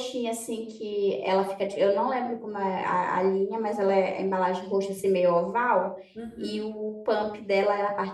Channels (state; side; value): identical; both; correlation 1.00